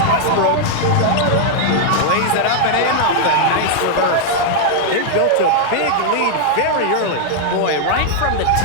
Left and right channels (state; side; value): different; both; correlation -0.01